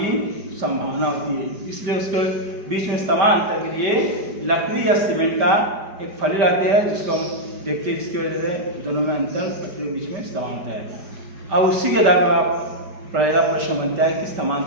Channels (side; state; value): left; late; 5.1 ms